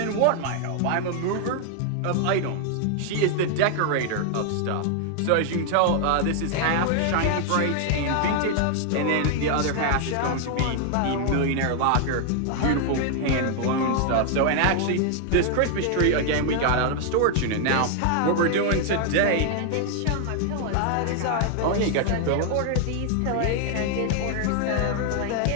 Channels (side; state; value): both; different; correlation 0.00